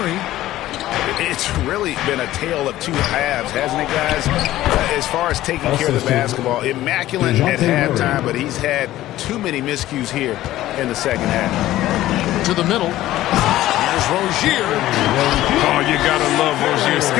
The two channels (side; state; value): right; quieter; 14.9 dB